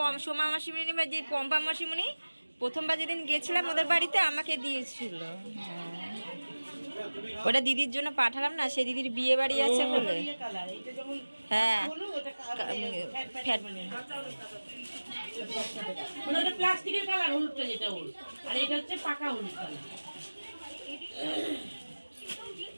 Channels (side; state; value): both; inverted; correlation -1.00